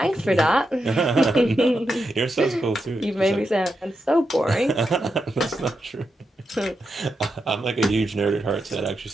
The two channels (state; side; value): normal; both; correlation 0.86